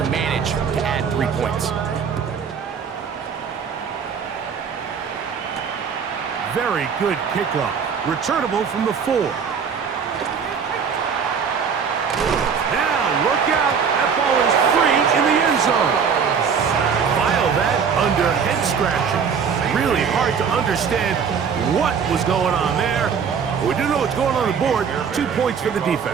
manage to add 3 points. Very good kickoff. Returnable from the 4. Now, look out. That ball is free in the end zone. File that under head scratching. Really hard to understand what was going on there. We do know what's going on the board. 2 points for the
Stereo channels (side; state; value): left; quieter; 6.6 dB